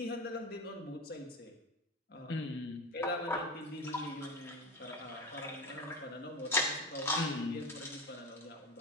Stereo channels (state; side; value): normal; both; correlation 0.22